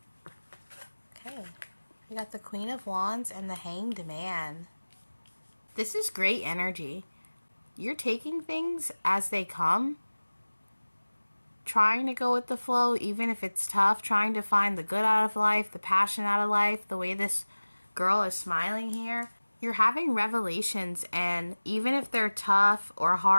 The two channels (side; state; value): both; inverted; correlation -1.00